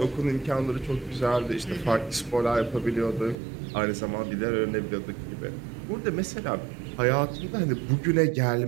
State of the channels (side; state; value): left; drops out; at 3.4 s